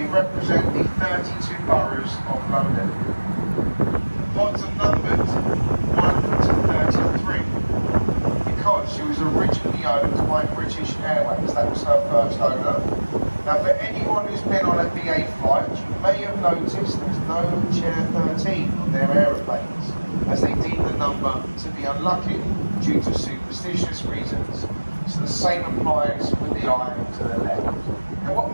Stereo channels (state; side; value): inverted; both; correlation -1.00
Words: represent the 32 boroughs of London. The pods are numbered 1 to 33 because she was originally owned by British Airways. That was her first owner. Now for anyone who's been on a BA flight, you may have noticed there's no chair 13 on their aeroplanes, as they deem the number to be unlucky due to superstitious reasons. So the same applies with the eye to the left. Now